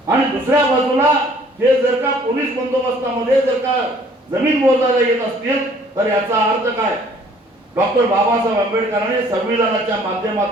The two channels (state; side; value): normal; both; correlation 0.57